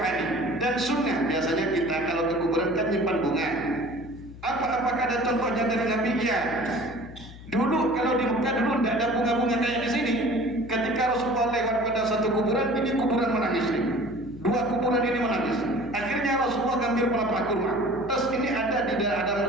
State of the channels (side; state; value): left; noise; hum, 16 dB below the sound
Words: dan sunnah biasanya kita kalau ke kuburan kan nyimpan bunga. Apakah ada contohnya dari Nabi? Ya. Dulu kalau di Mekah dulu tidak ada bunga-bunga kayak di sini. Ketika Rasulullah lewat pada satu kuburan, ini kuburan menangis nih. 2 kuburan ini menangis. Akhirnya Rasulullah ngambil pelepah kurma. Terus ini ada di